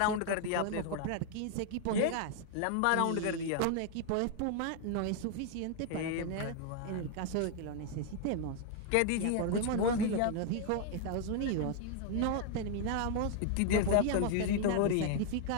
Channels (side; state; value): both; different; correlation 0.00